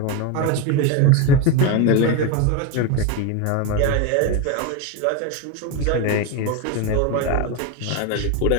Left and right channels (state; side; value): different; both; correlation 0.03